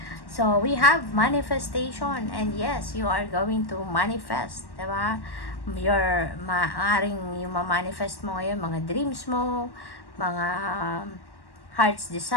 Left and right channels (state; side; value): late; right; 1.1 ms